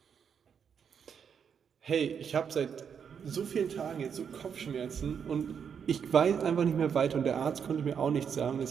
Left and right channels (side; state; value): left; quieter; 7.2 dB